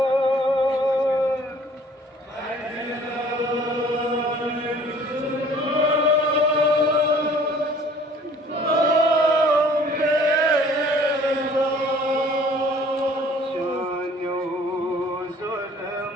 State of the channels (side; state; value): both; normal; correlation 0.53